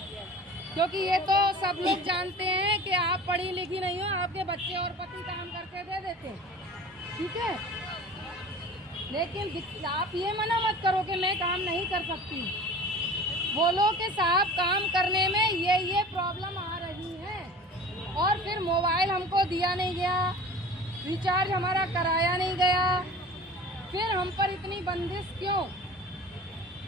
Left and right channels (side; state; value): both; normal; correlation 0.40